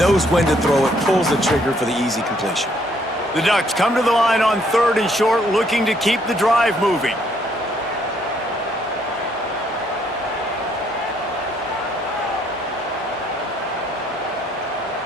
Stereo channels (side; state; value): both; normal; correlation 0.68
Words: when to throw it, pulls the trigger for the easy completion. The Ducks come to the line on 3rd and short, looking to keep the drive moving.